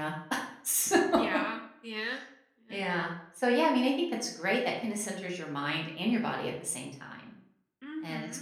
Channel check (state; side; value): identical; both; correlation 1.00